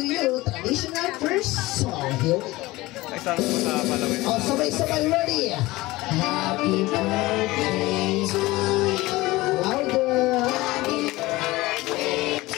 you. Traditional first song. Here we go. O, sabay-sabay. Ready. Happy birthday to you. Louder. Happy birthday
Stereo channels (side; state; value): right; quieter; 19.7 dB